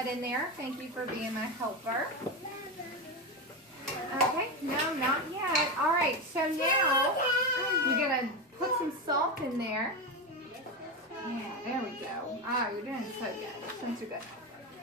in there. Thank you for being my helper. Okay, no, not yet. All right, so now you're going to put some salt in there. Yeah, there we go. Ah, you're doing so good. Doing so good.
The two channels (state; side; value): normal; both; correlation 0.15